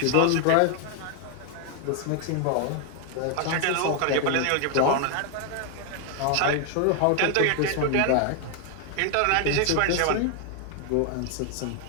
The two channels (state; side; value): different; both; correlation 0.00